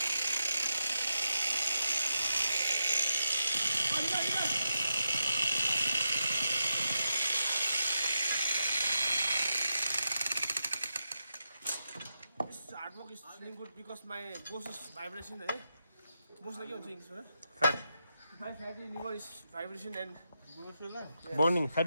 work is feeling good because my boss is vibration. Boss like English, Fat. my fatty liver is vibration and Burning.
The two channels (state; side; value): inverted; both; correlation -0.86